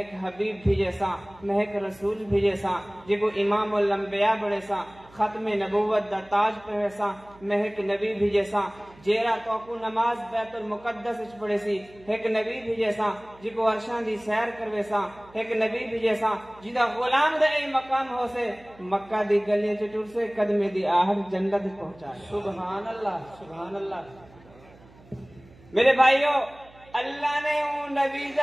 حبیب بھیجے سا، میں ایک رسول بھیجے سا، جے کو امام الانبیاء بڑے سا، ختم نبوت دا تاج پہنے سا، میں ایک نبی بھیجے سا، جیرا تو کو نماز بیت المقدس اچ پڑھے سی، ایک نبی بھیجے سا، جی کو عرشان دی سیر کروے سا، ایک نبی بھیجے سا، جیدہ غلام دے اے مقام ہو سے، مکہ دی گلیاں چٹور سے قدمے دی آہر جنت پہنچا۔ سبحان اللہ، سبحان اللہ۔ میرے بھائیو، اللہ نے اون نبی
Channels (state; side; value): noise; right; hum, 25 dB below the sound